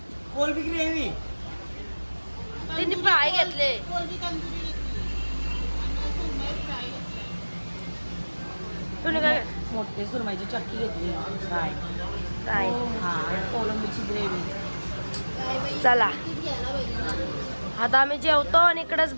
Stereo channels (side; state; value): both; inverted; correlation -1.00